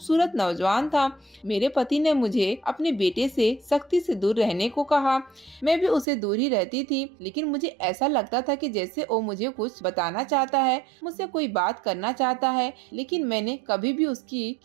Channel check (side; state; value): left; drops out; at 6.1 s